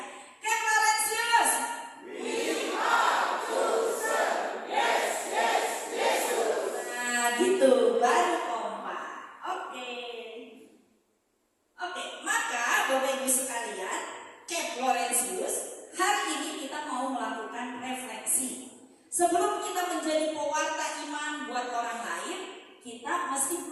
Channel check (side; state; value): both; identical; correlation 1.00